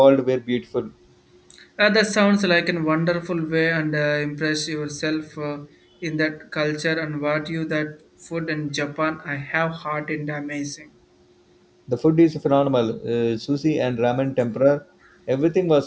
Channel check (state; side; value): identical; both; correlation 1.00